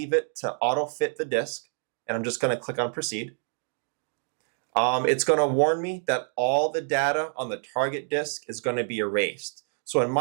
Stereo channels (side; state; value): left; silent; digital silence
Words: it to auto-fit the disk, and I'm just going to click on proceed. It's going to warn me that all the data on the target disk is going to be erased. So in